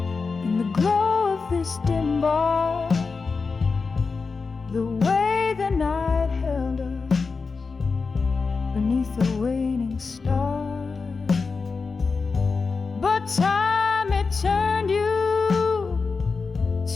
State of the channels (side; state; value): right; quieter; 4.6 dB